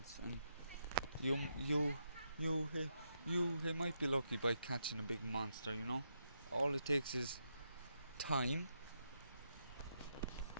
and you might be lucky by catching a big monster, you know. All it takes is time,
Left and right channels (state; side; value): inverted; both; correlation -0.81